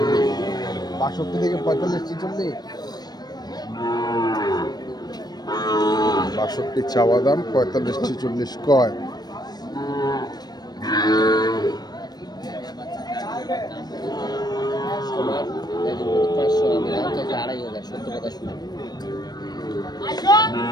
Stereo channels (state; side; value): late; right; 0.19 ms